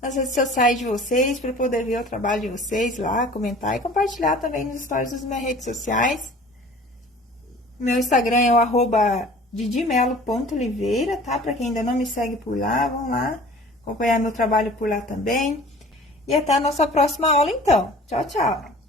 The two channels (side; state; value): both; normal; correlation 0.46